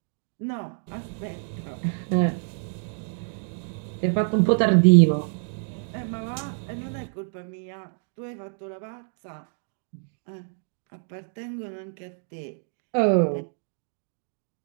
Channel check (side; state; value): left; silent; digital silence